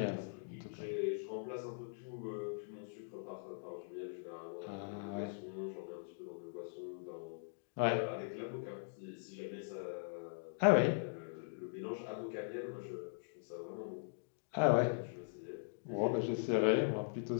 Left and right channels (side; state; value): right; silent; digital silence